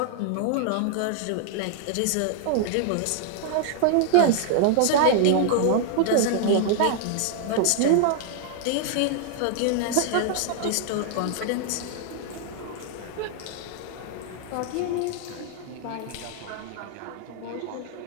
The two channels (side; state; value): both; different; correlation -0.01